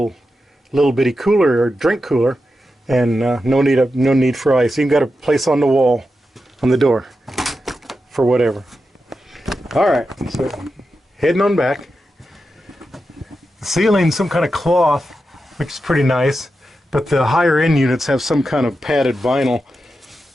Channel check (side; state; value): both; normal; correlation 0.89